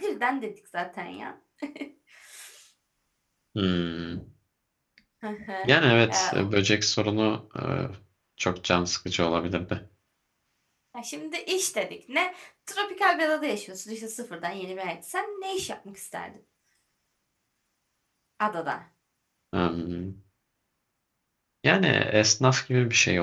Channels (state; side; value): identical; both; correlation 1.00